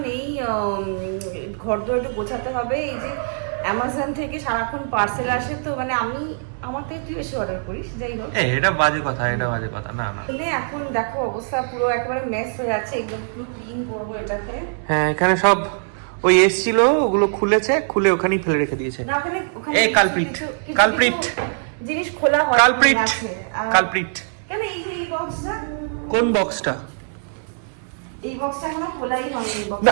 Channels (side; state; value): left; silent; 59 dB below the other